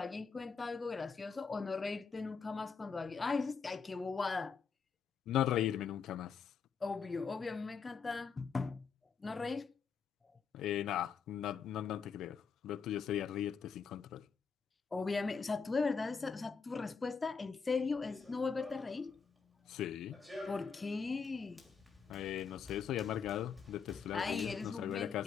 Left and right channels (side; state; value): right; quieter; 5.9 dB